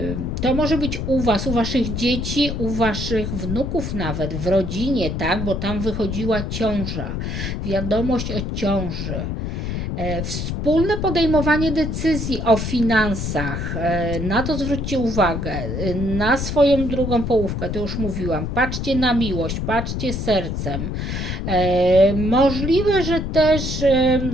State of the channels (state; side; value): noise; left; rumble, 3 dB below the sound